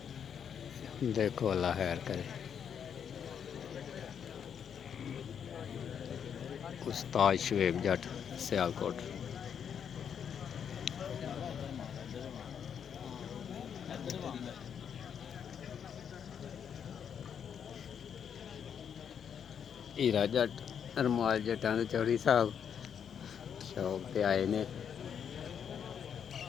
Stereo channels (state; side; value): quieter; right; 7.9 dB